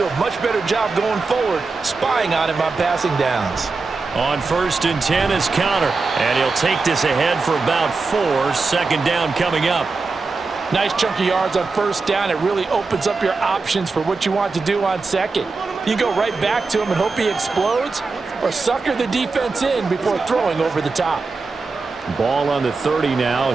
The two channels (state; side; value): quieter; left; 4.1 dB